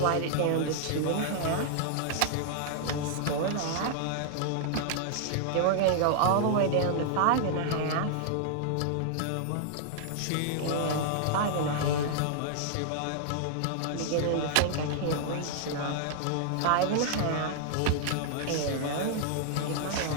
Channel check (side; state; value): both; different; correlation -0.01